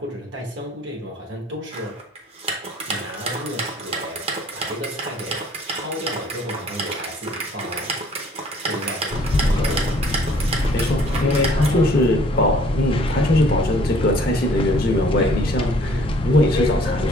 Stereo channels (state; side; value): normal; both; correlation 0.57